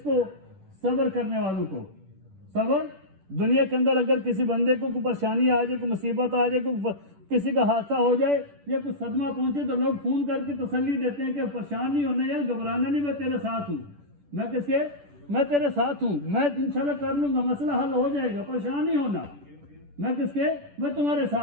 کو؟ صبر کرنے والوں کو. صبر دنیا کے اندر اگر کسی بندے کو کوئی پریشانی آ جائے، کوئی مصیبت آ جائے، کوئی کسی کا حادثہ ہو جائے یا کوئی صدمہ پہنچے تو لوگ فون کر کے تسلی دیتے ہیں کہ پریشان نہیں ہونا یار، گھبرانا نہیں، میں تیرے ساتھ ہوں. میں تیرے ساتھ ہوں، میں انشاءاللہ کر لوں گا، مسئلہ حل ہو جائے گا، پریشان نہیں ہونا. میں تمہارے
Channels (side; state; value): left; late; 10 ms